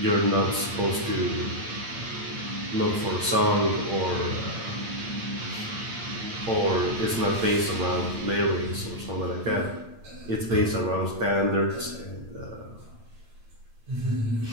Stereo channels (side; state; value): left; late; 8.8 ms